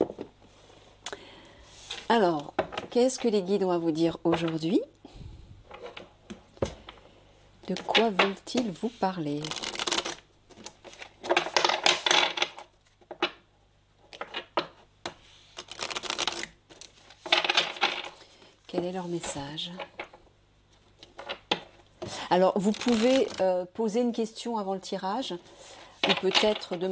Alors, qu'est-ce que les guides ont à vous dire aujourd'hui? De quoi veulent-ils vous parler? Quel est leur message? Alors, vous pouvez poser une question avant le tirage ou peut-être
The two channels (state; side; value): identical; both; correlation 1.00